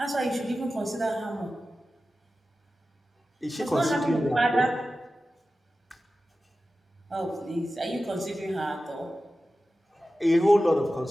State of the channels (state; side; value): normal; both; correlation 0.94